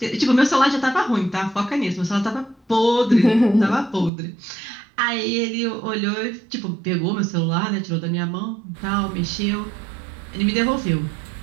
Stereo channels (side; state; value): left; drops out; at 4.1 s